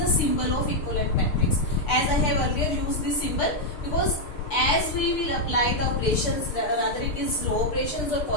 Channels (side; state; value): right; late; 6.7 ms